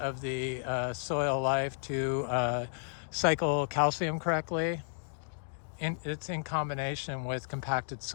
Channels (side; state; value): right; silent; digital silence